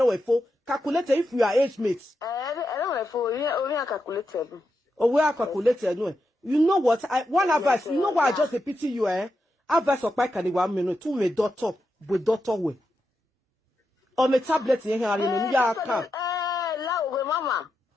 we for calculate if we are age mates. I don't know for we are calculated. Oh, we are calculated. No, you know what? One advice, you know why I just pity you, Advice of Pike and 1 minute, 2 me daughter with daughter way. Or me tablet in here, and you are come. Mama.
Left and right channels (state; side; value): normal; both; correlation 0.86